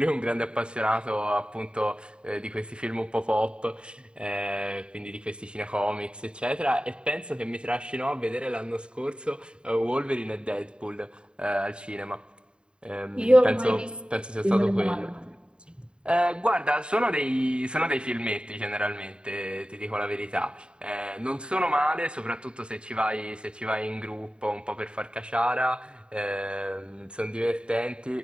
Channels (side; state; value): left; late; 0.052 ms